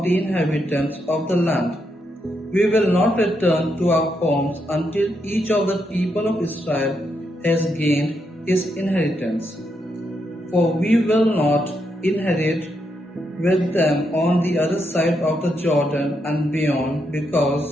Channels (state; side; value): normal; both; correlation 0.81